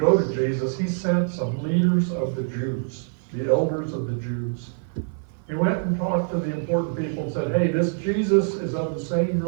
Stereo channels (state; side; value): silent; left; 56 dB below the other